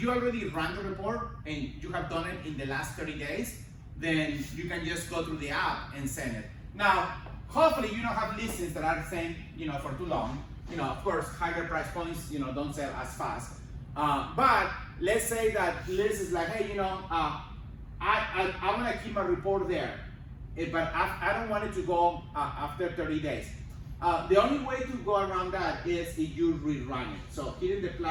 already ran the report and you have done it in the last 30 days, then you can just go through the app and send it. Now, hopefully you don't have listings that are saying, for too long. Of course, higher price points, don't sell as fast. But let's say that list is like, hey, I want to keep my report there, but I don't want it to go after 30 days. The only way to go around that is if you rerun it. So hitting the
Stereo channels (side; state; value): both; identical; correlation 1.00